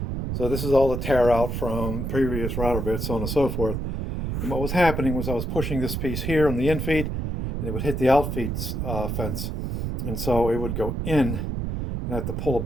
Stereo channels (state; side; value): noise; right; rumble, 2 dB below the sound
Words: So this is all the tear out from previous router bits, so on and so forth. And what was happening was I was pushing this piece here on the infeed, and it would hit the outfeed fence. And so it would go in, and I have to pull it